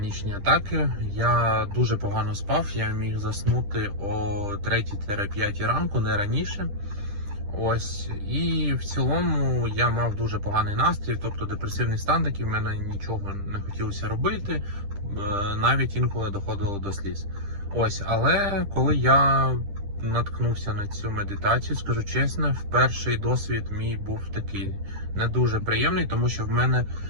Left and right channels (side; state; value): left; late; 10 ms